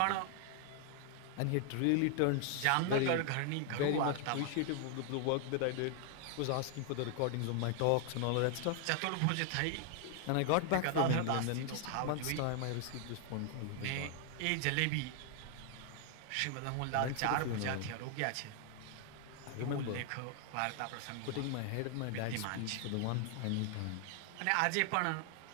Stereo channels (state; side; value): different; both; correlation 0.00